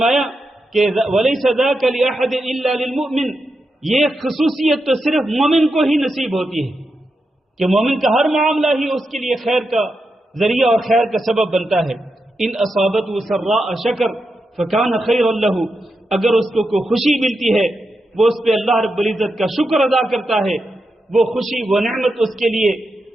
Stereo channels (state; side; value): normal; both; correlation 0.87